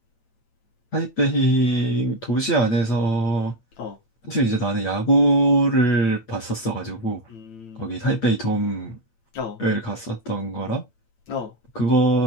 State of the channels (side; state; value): right; late; 8.9 ms